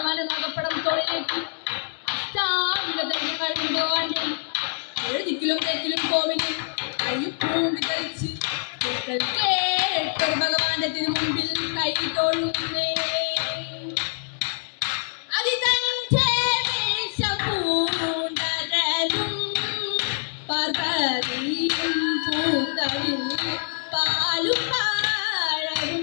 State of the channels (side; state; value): right; silent; digital silence